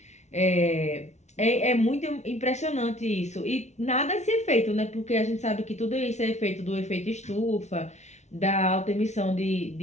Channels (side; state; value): right; late; 0.33 ms